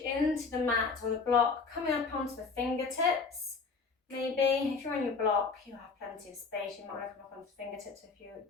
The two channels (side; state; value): right; quieter; 4.6 dB